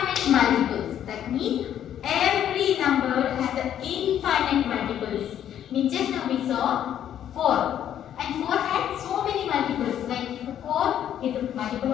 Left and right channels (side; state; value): right; quieter; 10.4 dB